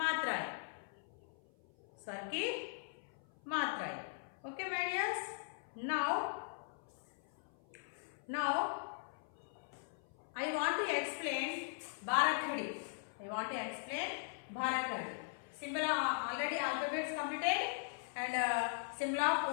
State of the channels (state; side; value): silent; right; 51 dB below the other